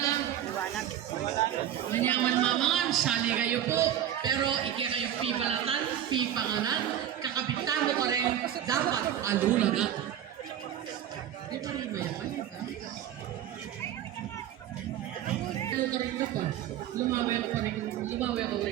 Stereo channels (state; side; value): quieter; left; 10.9 dB